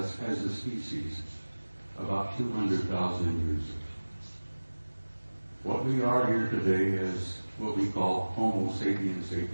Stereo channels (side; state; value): both; inverted; correlation -1.00